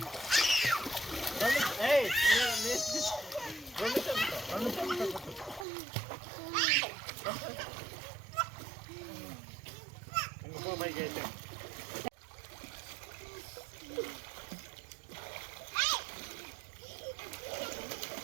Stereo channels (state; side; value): drops out; left; at 5.7 s